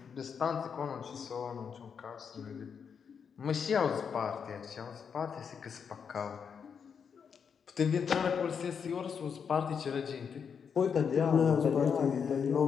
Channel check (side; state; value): right; quieter; 6.7 dB